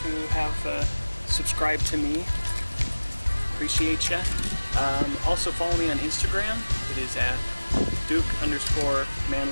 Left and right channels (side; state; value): both; inverted; correlation -1.00